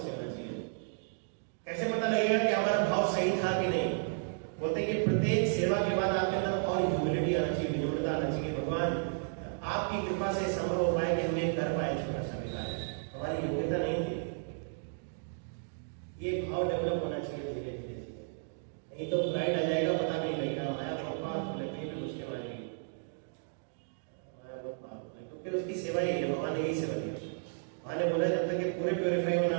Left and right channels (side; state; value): left; silent; digital silence